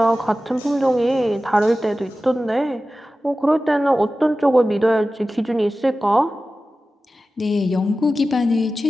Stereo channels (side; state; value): both; normal; correlation 0.95